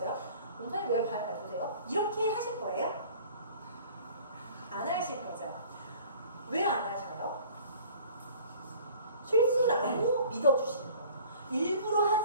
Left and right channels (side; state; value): both; inverted; correlation -0.49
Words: 원장님 왜 발을 밟으세요? 이렇게 하실 거예요? 안 하실 거죠. 왜 안 하셔요? 실수라고 믿어주시는 거예요. 일부러